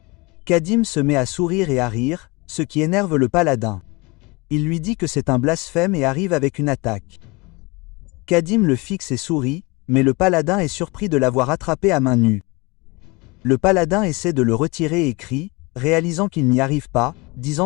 Kadim se met à sourire et à rire, ce qui énerve le paladin. Il lui dit que c'est un blasphème et arrive avec une attaque. Kadim le fixe et sourit, mais le paladin est surpris de l'avoir attrapé à main nue. Le paladin essaie de le retirer et crie, réalisant qu'il n'y arrive pas,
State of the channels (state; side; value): quieter; right; 25.7 dB